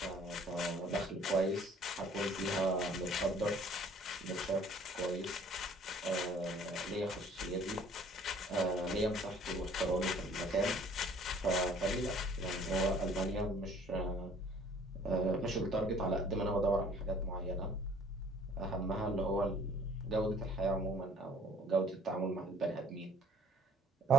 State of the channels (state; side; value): normal; both; correlation 0.55